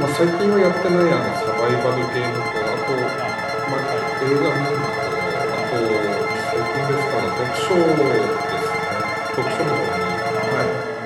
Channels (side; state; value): both; identical; correlation 1.00